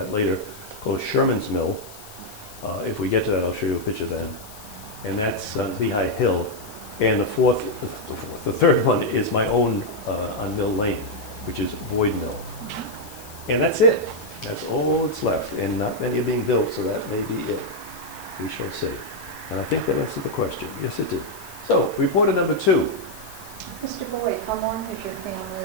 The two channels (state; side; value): noise; left; hiss, 18 dB below the sound